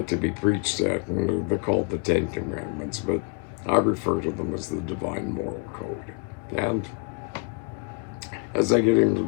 to be preached at, and they're called the Ten Commandments, but I refer to them as the Divine Moral Code. And as I get into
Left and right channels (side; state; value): right; quieter; 35.3 dB